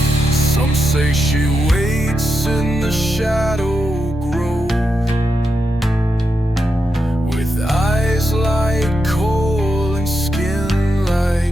Some say she waits in the shadow grove with eyes like coal and skin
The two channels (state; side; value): normal; both; correlation 0.87